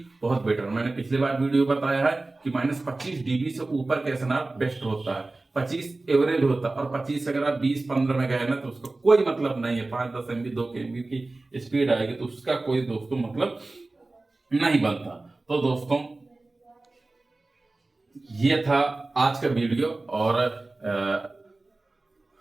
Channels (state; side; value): quieter; left; 3.2 dB